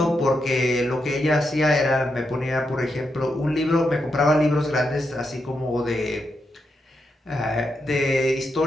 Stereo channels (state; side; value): normal; both; correlation 0.84